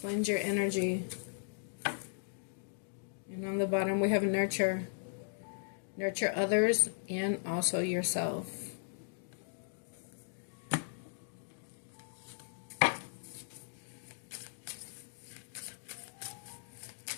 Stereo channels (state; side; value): silent; right; digital silence